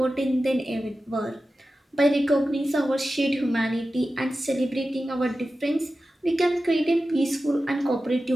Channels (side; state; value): both; normal; correlation 0.93